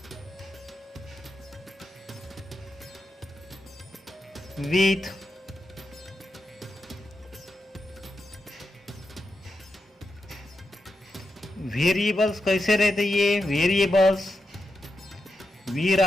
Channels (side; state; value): both; normal; correlation 0.87